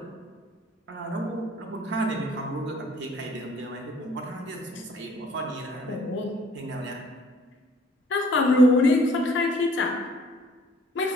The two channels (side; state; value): both; normal; correlation 0.57